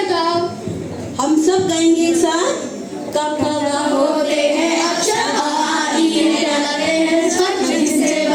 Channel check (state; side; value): identical; both; correlation 1.00